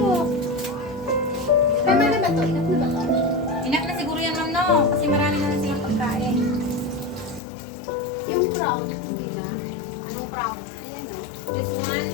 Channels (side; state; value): right; drops out; at 7.4 s